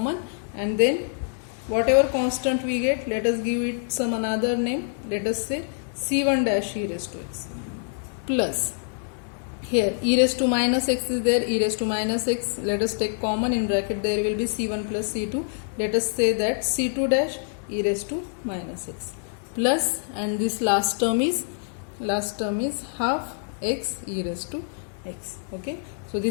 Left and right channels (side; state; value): right; silent; digital silence